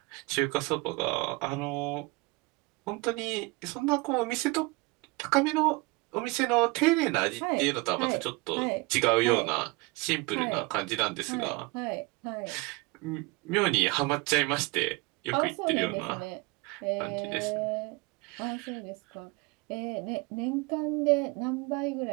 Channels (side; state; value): left; quieter; 25.6 dB